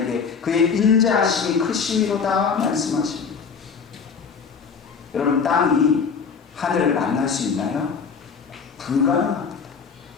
그의 인자하심이 크심이로다 말씀하십니다. 여러분, 땅이 하늘을 만날 수 있나요? 불가능합니다.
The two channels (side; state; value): right; quieter; 5.8 dB